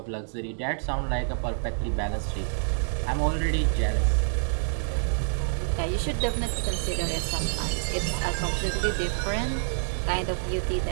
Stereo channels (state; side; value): silent; left; digital silence